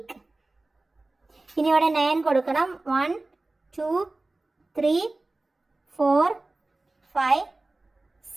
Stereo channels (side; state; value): left; quieter; 3.0 dB